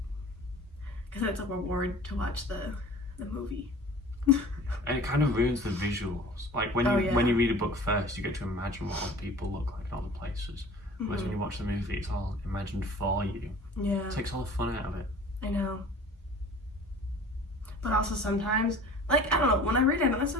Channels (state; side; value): normal; both; correlation 0.45